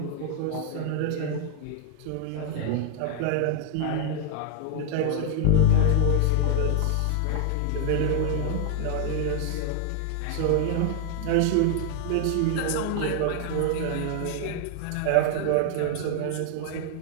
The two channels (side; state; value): both; different; correlation 0.00